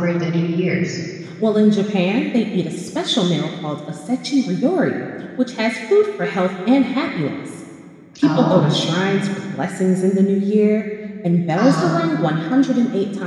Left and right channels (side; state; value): both; identical; correlation 1.00